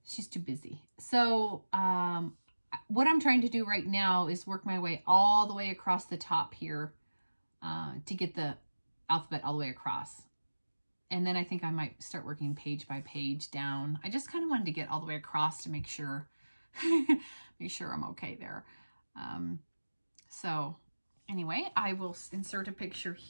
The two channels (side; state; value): both; inverted; correlation -1.00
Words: She's too busy. So what I'm trying to do right now is work my way all the way across the top here to get the alphabet all the way across. And then I think I might start working page by page down. I just kind of wanted to get all the way across to make sure, I'm okay there. So anyway, I will insert a picture